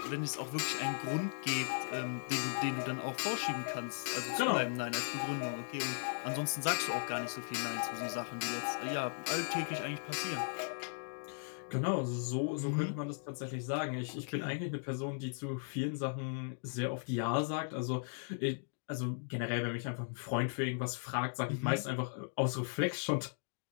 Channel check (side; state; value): right; silent; digital silence